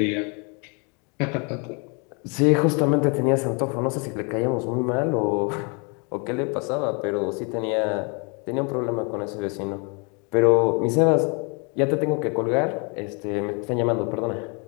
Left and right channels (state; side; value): quieter; right; 34.0 dB